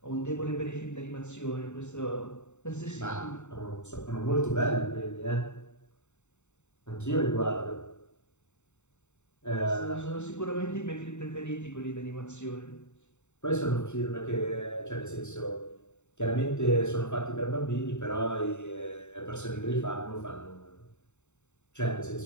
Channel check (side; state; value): right; late; 0.83 ms